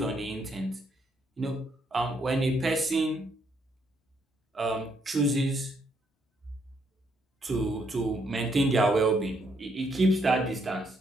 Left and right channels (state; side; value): normal; both; correlation 0.73